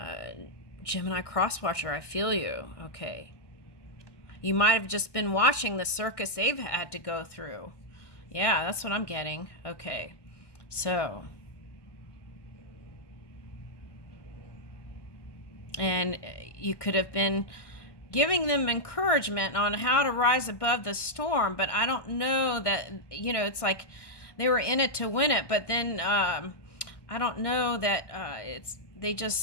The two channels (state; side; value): late; right; 1.2 ms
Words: Gemini Crosswatcher, I feel you. Okay. You might have just been watching the circus they've had to go through. Yeah, that's what I'm getting. Okay, so. And you could have been giving them encouragement on how to rise above the storm, but I don't know that, you know, it's like they were in it to win it, but then I don't know that